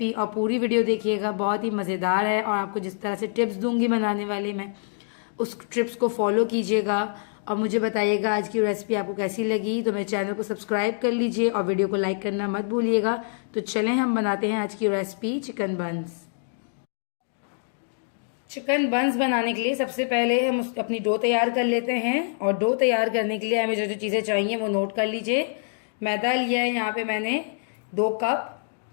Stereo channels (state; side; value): silent; right; digital silence